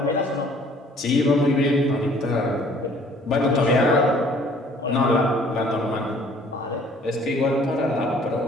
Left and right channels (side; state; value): both; normal; correlation 0.56